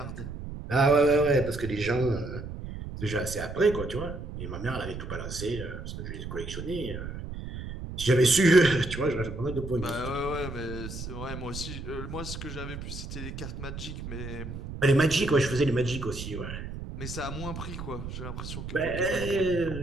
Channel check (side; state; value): right; noise; rumble, 8 dB below the sound